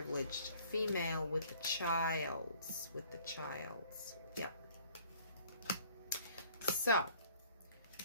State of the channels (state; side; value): inverted; both; correlation -0.55